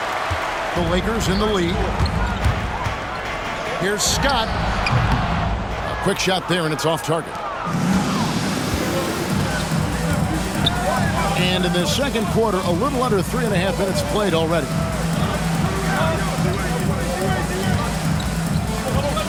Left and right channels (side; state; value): both; identical; correlation 1.00